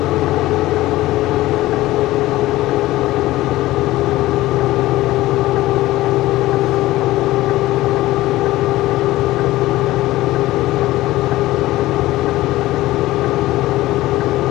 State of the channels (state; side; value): quieter; right; 16.9 dB